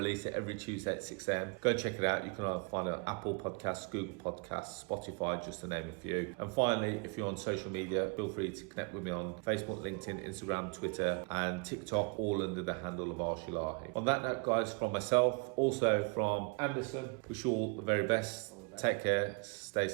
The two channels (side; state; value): left; quieter; 31.8 dB